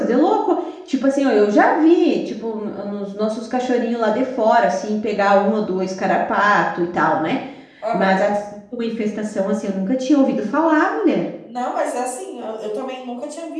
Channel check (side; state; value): both; identical; correlation 1.00